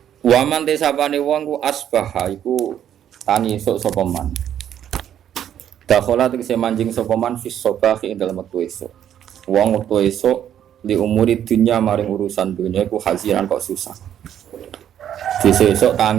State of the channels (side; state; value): left; quieter; 10.1 dB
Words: Waman desapane wong ku asbaha iku tangi esuk sapa man. Dakhala tegese manjing sapa man fis sabahi ing dalem wektu esuk. Wong wektu esuk li umuri dunya maring urusan dunya iku hazinan kok susah. Sesuk